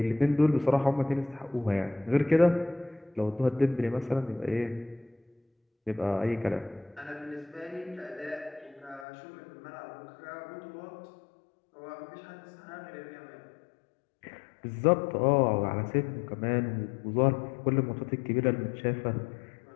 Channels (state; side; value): drops out; right; at 9.1 s